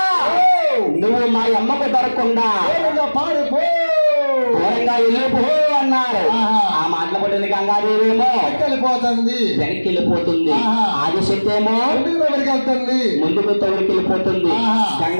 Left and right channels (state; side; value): inverted; both; correlation -1.00